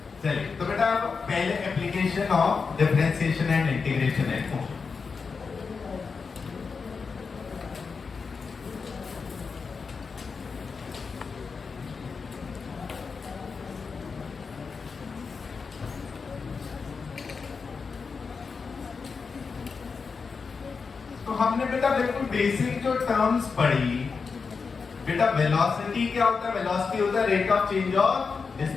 चलिए तो बेटा अब पहले application of differentiation and integration है। तो हमने बेटा बिल्कुल बेसिक जो टर्म्स पढ़ी बेटा, वेलोसिटी क्या होता है? वेलोसिटी होता है rate of change of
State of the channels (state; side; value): quieter; right; 5.1 dB